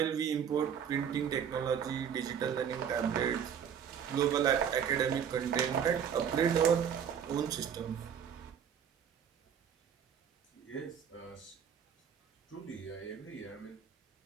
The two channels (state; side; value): quieter; left; 8.1 dB